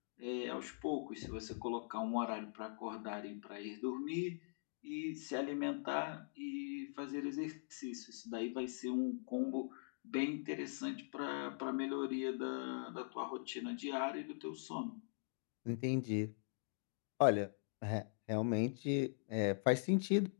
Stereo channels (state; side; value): silent; right; digital silence